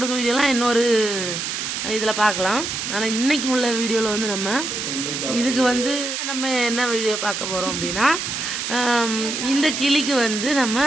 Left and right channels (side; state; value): right; noise; hiss, 3 dB below the sound